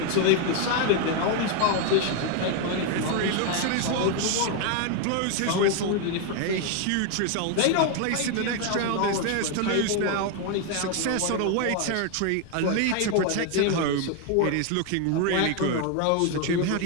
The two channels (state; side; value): different; both; correlation 0.01